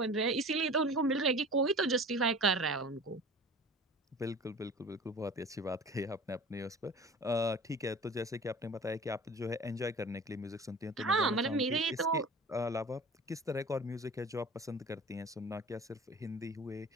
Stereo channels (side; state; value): both; normal; correlation 0.40